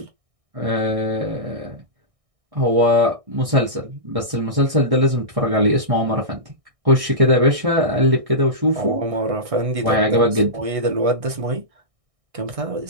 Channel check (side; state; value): left; late; 1.6 ms